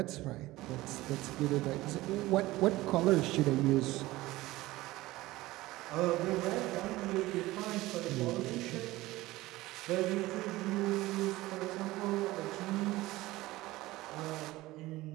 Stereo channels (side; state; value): left; quieter; 18.3 dB